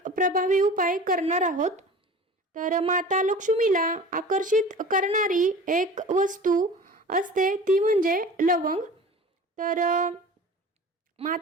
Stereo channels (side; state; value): both; normal; correlation 0.39